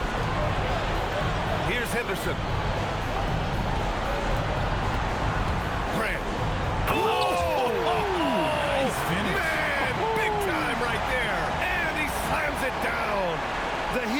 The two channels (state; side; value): identical; both; correlation 1.00